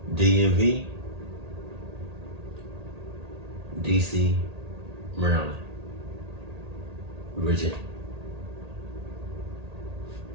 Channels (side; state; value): left; late; 1.8 ms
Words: DMV, DC, Maryland, Virginia.